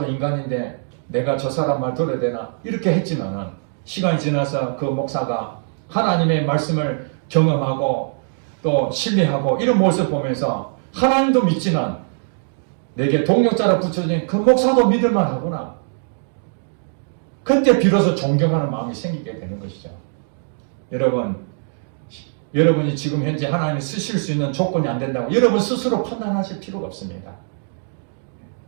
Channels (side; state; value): left; silent; digital silence